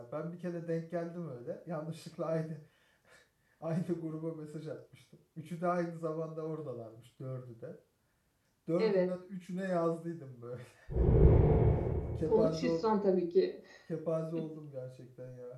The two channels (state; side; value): identical; both; correlation 1.00